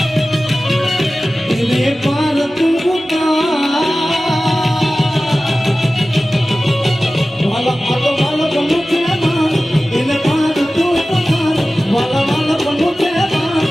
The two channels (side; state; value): both; normal; correlation 0.96